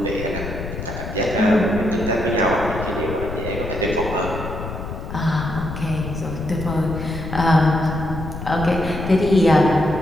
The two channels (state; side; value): noise; left; rumble, 8 dB below the sound